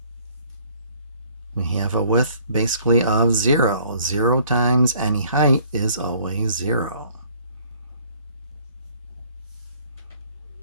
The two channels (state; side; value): inverted; both; correlation -0.58